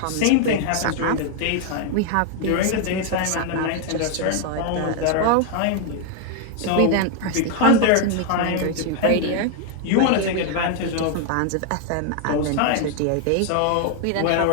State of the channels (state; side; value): different; both; correlation 0.00